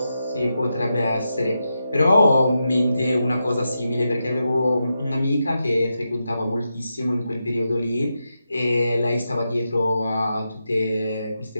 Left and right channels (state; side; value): inverted; both; correlation -0.87